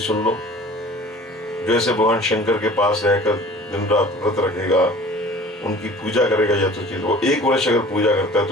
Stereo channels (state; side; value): normal; both; correlation 0.45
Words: लो। जैसे भगवान शंकर के पास रहकर दिन रात व्रत रखेगा, उनकी पूजा करेगा यथोचित, वो 1 वर्ष अगर पूजा करता है